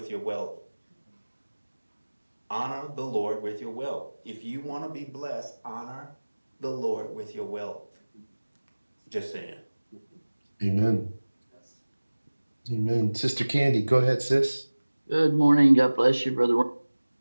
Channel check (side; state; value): both; inverted; correlation -1.00